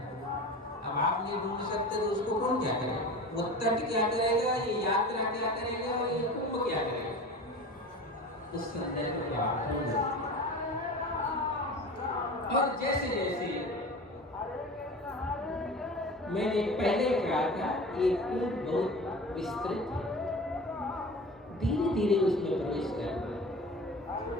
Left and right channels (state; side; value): normal; both; correlation 0.35